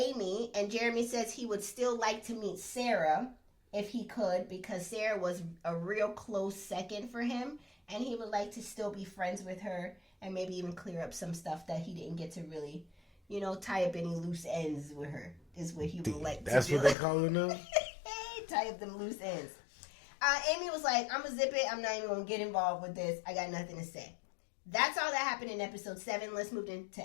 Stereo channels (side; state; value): right; drops out; at 16.9 s